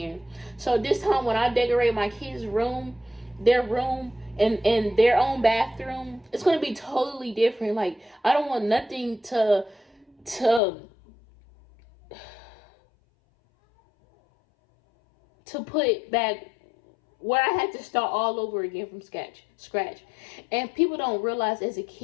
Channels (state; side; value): drops out; right; at 10.6 s